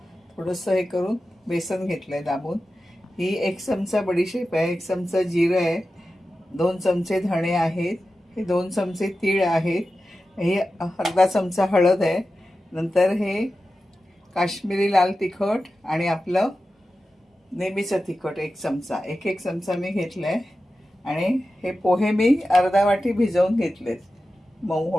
थोडंसं हे करून बेसन घेतलं आहे दाबून. ही 1 चमचा बडीशेप आहे, 1 चमचा जिरं आहे, 2 चमचे धणे आहेत, हे 2 चमचे तीळ आहेत, हे अर्धा चमचा हळद आहे. नंतर हे काश्मीरी लाल तिखट आणि आपलं नेहमीचं तिखट 1 चमचा, एक चमचा मी घेतलं आहे. आणि हे पोहे मी अर्धा वाटी भिजवून घेतलेत मऊ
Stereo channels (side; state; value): both; normal; correlation 0.93